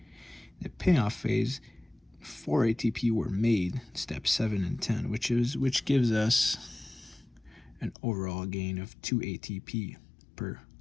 The payoff phase, 4 ATP were made in steps 7 and 10, which gives us an overall gain of 2 ATP per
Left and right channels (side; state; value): right; drops out; at 8.0 s